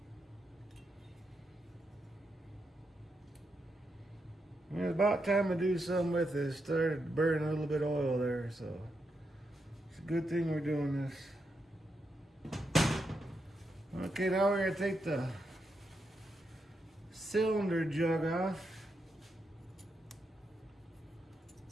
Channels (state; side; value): normal; both; correlation 0.83